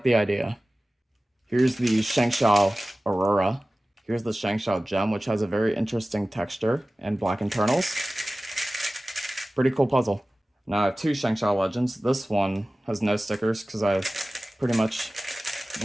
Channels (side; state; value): both; normal; correlation 0.97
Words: the idea. Here's the Shangshao Aurora. Here's the Shangshao Gem, which has a very interesting texture and black internals. Pretty cool puzzle. Now I have two Shangshao Legends. This one has no stickers because I pretty much